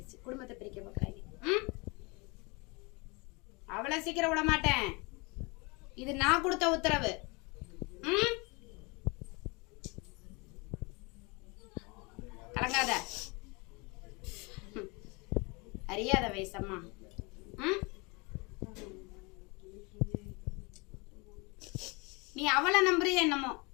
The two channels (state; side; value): quieter; right; 28.3 dB